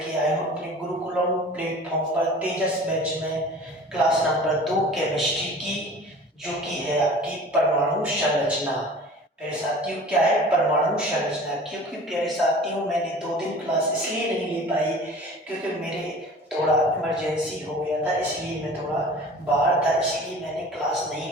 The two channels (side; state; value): both; normal; correlation 0.43